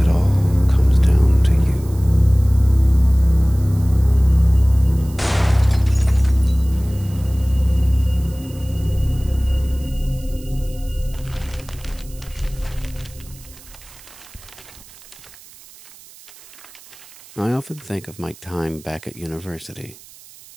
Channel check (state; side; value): noise; right; hiss, 22 dB below the sound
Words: all comes down to you. I often think of my time back at university,